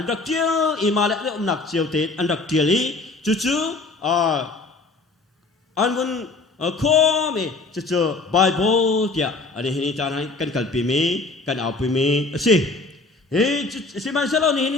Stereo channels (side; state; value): right; quieter; 3.6 dB